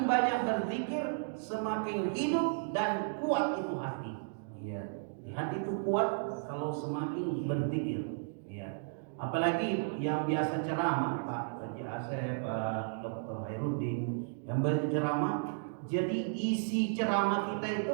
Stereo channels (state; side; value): silent; left; digital silence